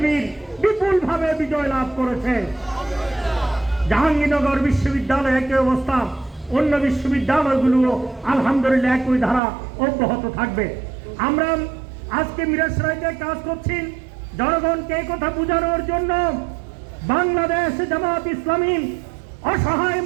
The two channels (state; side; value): drops out; left; at 9.4 s